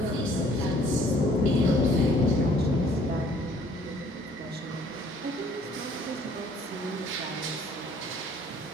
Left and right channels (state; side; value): normal; both; correlation 0.58